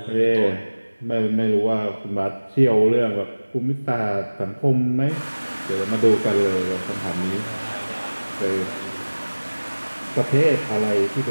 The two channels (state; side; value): inverted; both; correlation -1.00